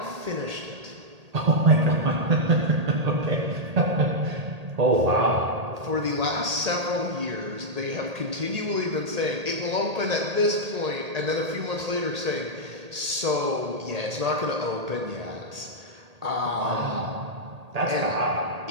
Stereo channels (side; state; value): left; late; 1.8 ms